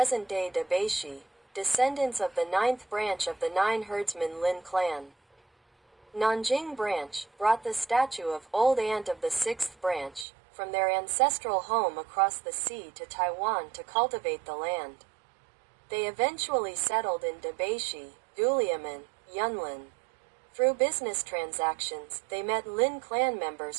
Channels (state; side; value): drops out; left; at 10.2 s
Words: Debeishi, descendants of the 9th branch of the 9 herdsmen Lin clan, Nanjing branch, brought the statue of Old Aunt of the 6th branch from their ancestral home across the sea to Taiwan to cultivate the land. They eventually settled in Debeishi, Duliamen, Yunlin. Through business transactions, they met Lin clan